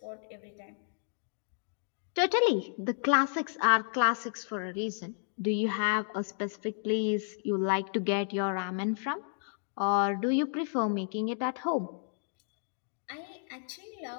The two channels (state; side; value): silent; right; digital silence